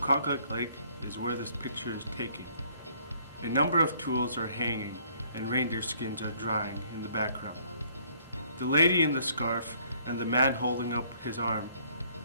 Lake is where this picture is taken. A number of tools are hanging and reindeer skins are drying in the background. The lady in the scarf and the man holding up his arm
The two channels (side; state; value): both; inverted; correlation -0.63